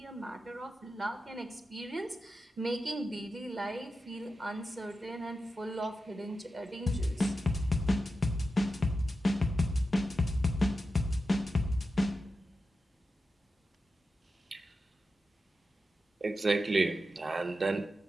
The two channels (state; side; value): normal; both; correlation 0.90